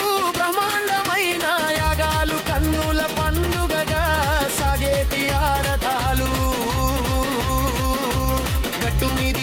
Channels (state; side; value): identical; both; correlation 1.00